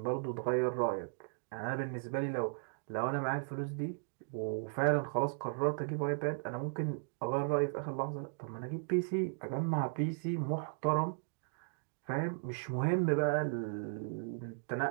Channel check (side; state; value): left; silent; digital silence